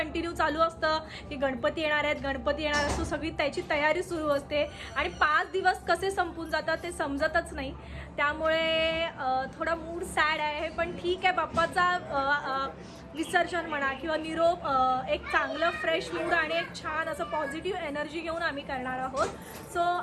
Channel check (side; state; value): both; identical; correlation 1.00